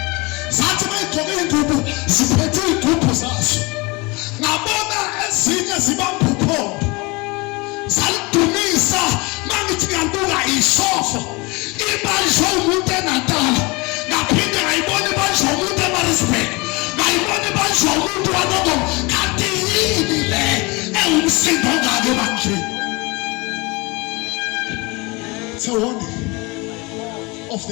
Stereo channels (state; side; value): quieter; right; 26.0 dB